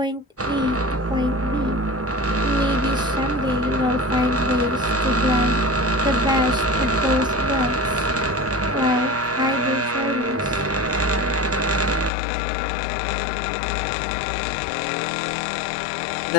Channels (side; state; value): right; drops out; at 12.1 s